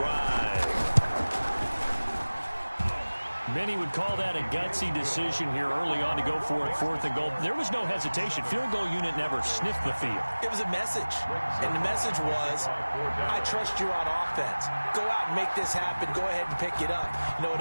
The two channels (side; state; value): both; inverted; correlation -1.00